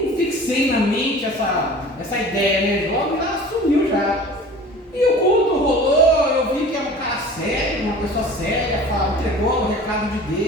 fixei na mente essa ideia, né? Logo já sumiu já. E o culto rolou, eu vi que era um cara sério, uma pessoa séria, entregou o recado de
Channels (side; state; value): both; normal; correlation 0.42